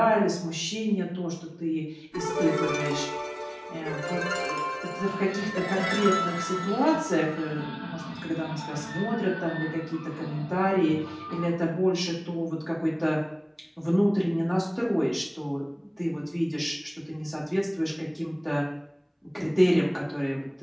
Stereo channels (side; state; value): both; identical; correlation 1.00